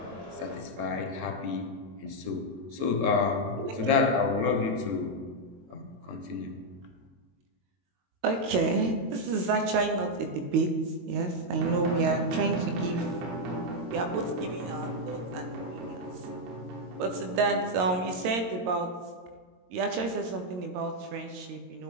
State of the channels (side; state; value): left; late; 22 ms